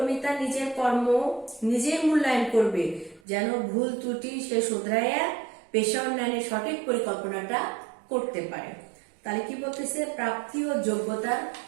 তার নিজের কর্ম নিজেই মূল্যায়ন করবে, যেন ভুল ত্রুটি সে শুধরাইয়া পেশা উন্নয়নের সঠিক পরিকল্পনাটা করতে পারে। তাহলে কি বলতেছে? প্রাপ্তি ও যোগ্যতার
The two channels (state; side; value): drops out; left; at 3.2 s